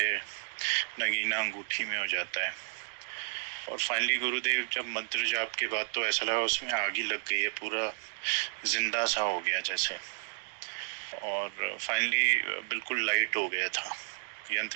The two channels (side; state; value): left; silent; digital silence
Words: नगीना अंगूठी में हो जाता है। और फाइनली गुरुदेव, जब मंत्र जाप के बाद तो ऐसा लगा उसमें आग ही लग गई है, पूरा जिंदा सा हो गया जैसे। और फाइनली बिल्कुल लाइट हो गया था,